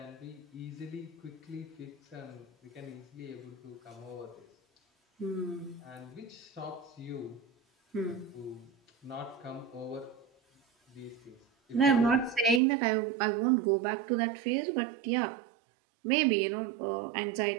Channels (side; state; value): left; drops out; at 12.6 s